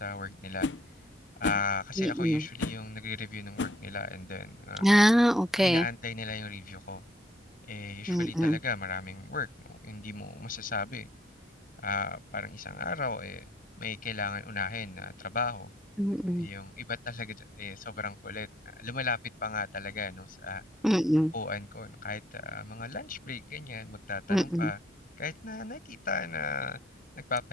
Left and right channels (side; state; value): both; normal; correlation 0.66